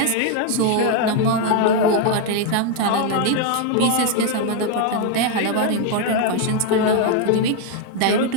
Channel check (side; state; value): both; different; correlation 0.01